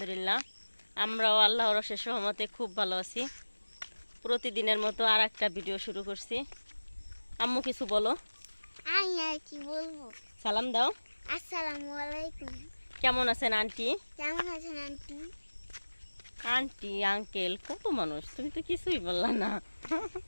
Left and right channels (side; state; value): both; inverted; correlation -1.00